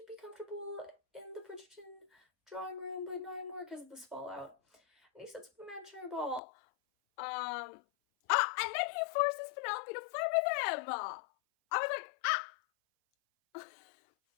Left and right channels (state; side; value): drops out; right; at 6.4 s